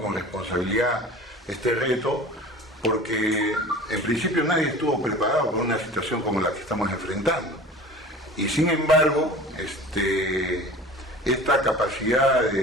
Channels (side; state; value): both; normal; correlation 0.40